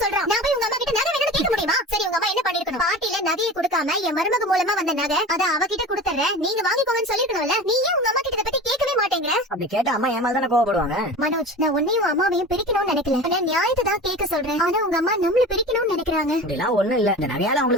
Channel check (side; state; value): both; normal; correlation 0.34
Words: சொல்றான். நான் போய் உங்க அம்மா கிட்ட நகை வேணும்னு கேட்க முடியுமா? சரி, உங்க அம்மா என்ன பண்ணிருக்கணும்? பாட்டில நகையை கொடுக்காம என் மருமக மூலமா வந்த நகை அத அவகிட்ட கொடுத்துறேன், நீங்க வாங்கிக்கோங்கன்னு சொல்லிருக்கணும்ல. நீ ஏன் உங்க அம்மா கிட்ட இத பத்தி கேட்கவே மாட்டேங்கிற? அப்படி கேட்டா அம்மா ஏமால் தானே கோவப்படுவாங்க. மனோஜ், நான் உன்னையும் அம்மாவையும் பிரிக்கணும்னு நினைக்கல. நான் நியாயத்தை தான் கேட்க சொல்றேன். ஆனா உங்க அம்மா நம்மள பிரிக்கணும்னு நினைக்கிறாங்க. அப்படிலாம் ஒண்ணும் இல்ல. இந்த நகையால